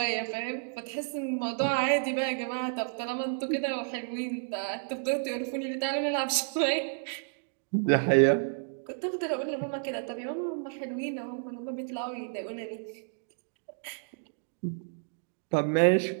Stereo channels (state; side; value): silent; left; digital silence